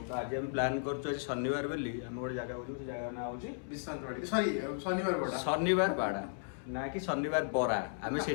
ତ ଆଜି ଆମେ ପ୍ଲାନ୍ କରୁଛୁ, ଆଜି ଶନିବାର ବୋଲି ଆମେ ଗୋଟେ ଜାଗାକୁ ଯିବୁ। ସେ ଜାଗା ନାଁ ହେଉଛି ଶନିବାର ବାଡ଼ା, ନା କି ଶନିବାର ବରା। ଆମେ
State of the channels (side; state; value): right; silent; 54 dB below the other